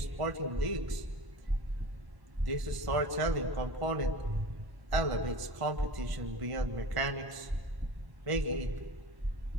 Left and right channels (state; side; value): late; left; 1.0 ms